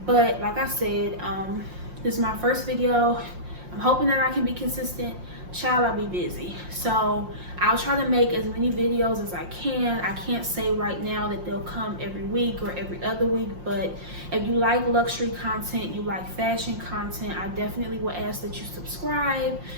But like I said, this is my first video. I'm hoping that I can be consistent. Child, I'll be busy. So I'll try to make as many videos as I can. I can't say right now that they'll come every week or every other week, but if you like luxury content, you like fashion content, I definitely will ask that you subscribe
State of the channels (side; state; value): left; late; 5.6 ms